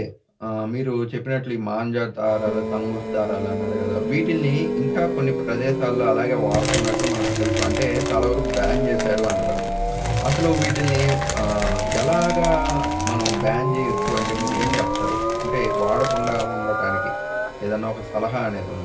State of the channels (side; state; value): both; identical; correlation 1.00